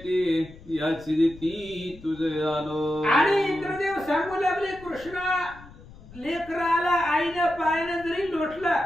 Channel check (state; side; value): noise; left; rumble, 20 dB below the sound